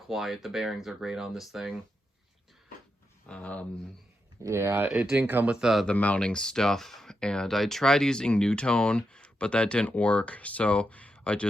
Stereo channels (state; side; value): normal; both; correlation 0.85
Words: The bearings are great on this thing. Um, yeah, it didn't come with the mounting stuff, and I tried using NuTone, but that didn't work, so I